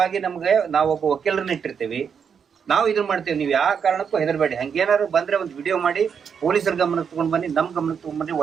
ನಮ್ಗೆ ನಾವೊಬ್ಬ ವಕೀಲರನ್ನ ಇಟ್ಟಿರ್ತೀವಿ, ನಾವು ಇದನ್ನ ಮಾಡ್ತೇವೆ. ನೀವು ಯಾವ ಕಾರಣಕ್ಕೂ ಹೆದರ್ಬೇಡಿ. ಹಂಗೇನಾದ್ರು ಬಂದ್ರೆ ಒಂದು ವಿಡಿಯೋ ಮಾಡಿ ಪೊಲೀಸರ ಗಮನಕ್ಕೆ ತಗೊಂಡ್ ಬನ್ನಿ, ನಮ್ ಗಮನಕ್ಕೆ ತಗೊಂಡ್ ಬನ್ನಿ.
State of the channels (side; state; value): left; quieter; 6.9 dB